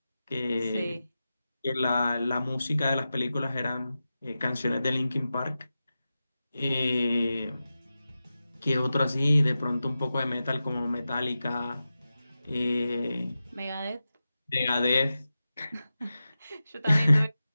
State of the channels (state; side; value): inverted; both; correlation -0.93